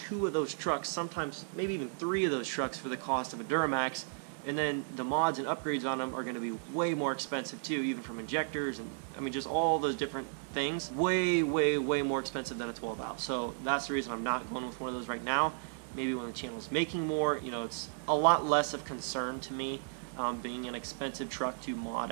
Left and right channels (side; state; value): left; silent; digital silence